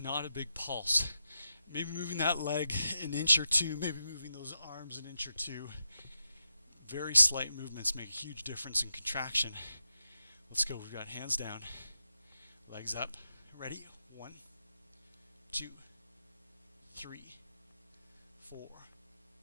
not a big pulse. Maybe moving that leg an inch or two, maybe moving those arms an inch or two. Very slight movements make a huge difference in contraction. Let's go. We've got hands down, legs up. Ready? 1, 2, 3, 4,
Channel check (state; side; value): inverted; both; correlation -0.87